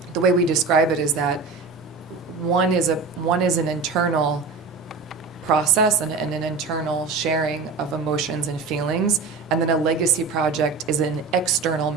the way we describe it is that one is an internal process and an internal sharing of emotions and feelings, and then a legacy project is an external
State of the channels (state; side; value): quieter; left; 4.5 dB